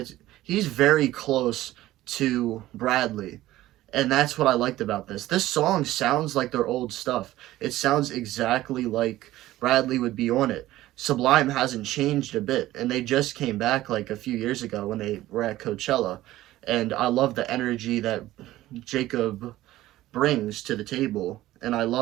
he's very close to Bradley. And that's what I liked about this. This song sounds like their old stuff. It sounds exactly like Bradley would be on it. Sublime hasn't changed a bit, and they just came back like a few years ago when they were at Coachella. And I love the energy that Jacob brings to the table. And I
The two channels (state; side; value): quieter; left; 15.6 dB